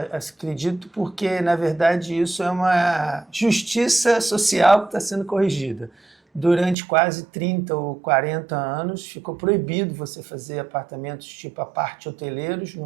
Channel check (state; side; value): drops out; left; at 6.8 s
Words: acredito porque, na verdade, isso é uma justiça social que está sendo corrigida. Durante quase 30 ou 40 anos, ficou proibido você fazer apartamentos tipo aparte hoteleiros no